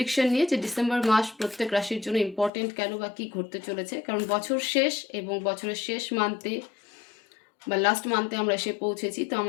নিয়ে, যে ডিসেম্বর মাস প্রত্যেক রাশির জন্য ইম্পর্টেন্ট কেন বা কী ঘটতে চলেছে। কারণ বছর শেষ এবং বছরের শেষ মান্থে বা লাস্ট মান্থে আমরা এসে পৌঁছেছি, তো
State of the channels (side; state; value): right; drops out; at 2.5 s